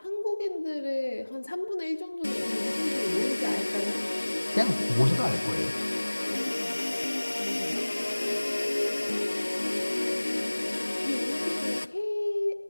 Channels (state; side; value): inverted; both; correlation -1.00